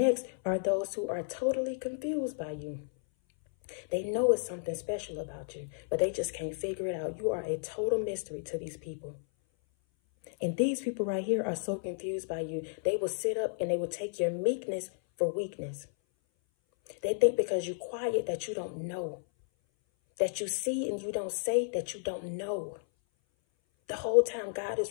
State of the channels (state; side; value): silent; right; 56 dB below the other